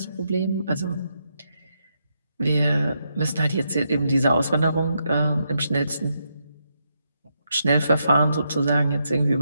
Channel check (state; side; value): inverted; both; correlation -0.81